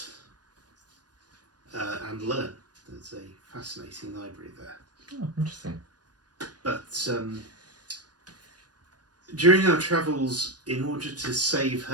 and learn. There's a fascinating library there. Oh, interesting. But during our travels, in order to save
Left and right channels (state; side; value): late; left; 0.69 ms